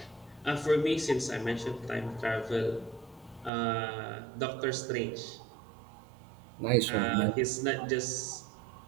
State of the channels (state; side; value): drops out; left; at 3.5 s